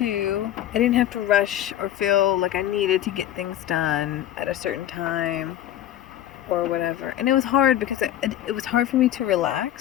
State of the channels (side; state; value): right; quieter; 12.2 dB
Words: I didn't have to rush or feel like I needed to get things done at a certain time or whatever. And it was hard because it was hard for me to